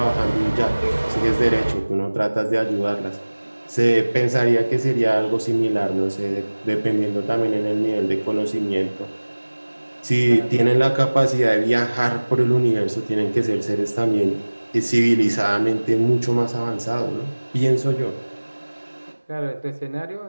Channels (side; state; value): both; inverted; correlation -1.00